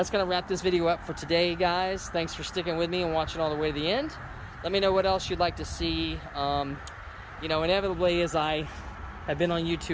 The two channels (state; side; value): identical; both; correlation 1.00